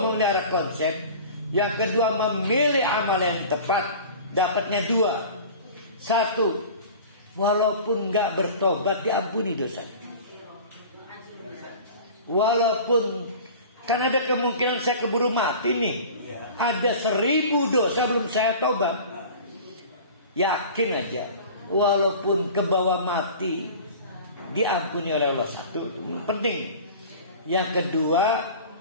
konsep. Yang kedua, memilih amal yang tepat. Dapatnya dua. Satu, walaupun gak bertobat diampuni dosanya. Walaupun kan ada kemungkinan saya keburu mati nih, ada 1000 dosa belum saya tobat. Yakin aja, walaupun ke bawah mati diampuni oleh Allah. Satu, itu penting. Yang kedua,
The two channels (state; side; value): inverted; both; correlation -0.39